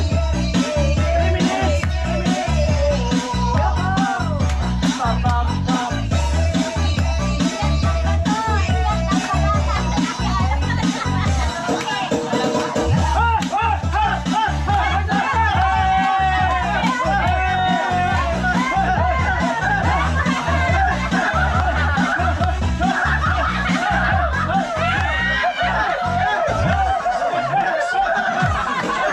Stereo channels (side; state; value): both; identical; correlation 1.00